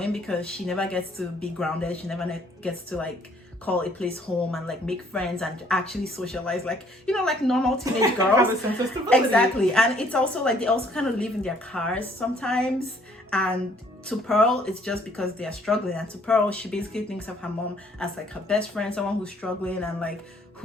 because she never gets to be grounded. She never gets to like call a place home and like make friends and actually socialize, like, you know, like normal teenage girls. Have a sense of stability. Exactly. And it's also like they also kind of live in their cars sometimes, and to Pearl it's just because they are struggling, and to Pearl she basically thinks of her mom as like her best friend, someone who's struggling and like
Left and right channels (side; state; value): both; normal; correlation 0.62